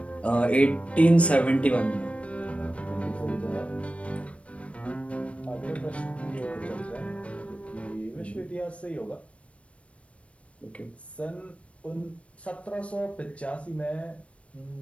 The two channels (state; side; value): late; right; 0.062 ms